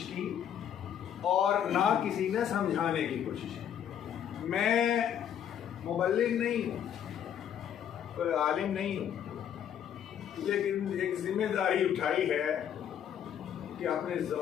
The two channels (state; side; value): quieter; right; 9.3 dB